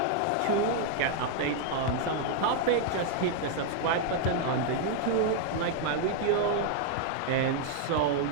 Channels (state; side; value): different; both; correlation 0.00